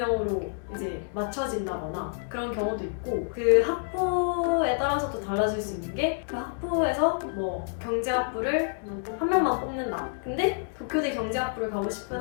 이제 맞춰진다거나 그런 경우도 있고 그 학부에 따라서도 달라질 수 있는 게 그 학부에서 뭐 경제학부를 한 명만 뽑는다. 근데 도쿄대 경제학부를 가고 싶은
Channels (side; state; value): right; silent; 59 dB below the other